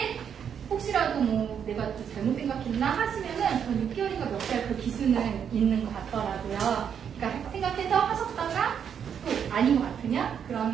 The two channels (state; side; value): quieter; left; 8.0 dB